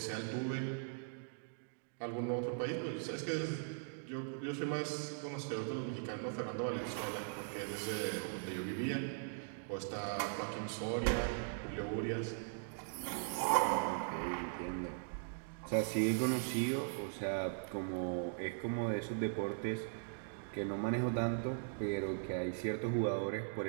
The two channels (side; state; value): left; silent; digital silence